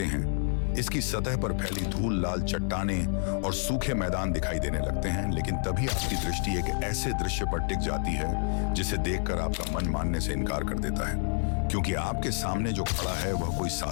हैं, इसकी सतह पर फैली धूल, लाल चट्टानें और सूखे मैदान दिखाई देने लगते हैं। लेकिन तभी आपकी दृष्टि एक ऐसे दृश्य पर टिक जाती है जिसे देखकर आपका मन मानने से इनकार कर देता है, क्योंकि आपके सामने जो खड़ा है वह कोई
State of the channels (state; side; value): silent; right; 59 dB below the other